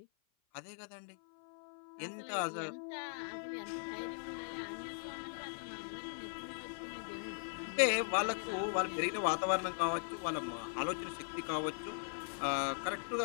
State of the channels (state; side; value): silent; right; 51 dB below the other